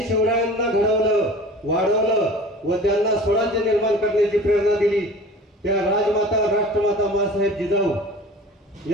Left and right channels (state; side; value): normal; both; correlation 0.41